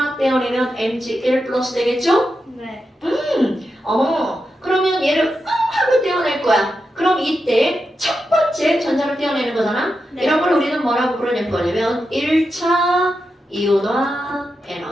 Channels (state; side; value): normal; both; correlation 0.88